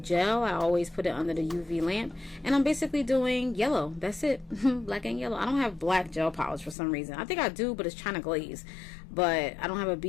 gel I always put it under the UV lamp, and I'm basically doing yellow. That's it. Black and yellow. I don't have black gel polish for some reason. I think I do, but it's China glaze, but I don't have a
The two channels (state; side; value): drops out; right; at 6.8 s